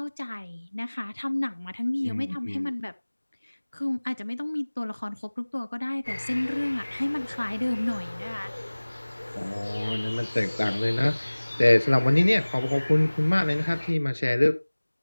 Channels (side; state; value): both; inverted; correlation -1.00